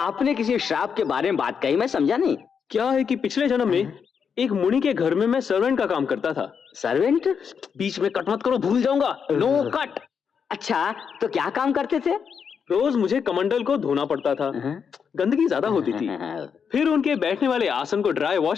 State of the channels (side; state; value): right; quieter; 6.7 dB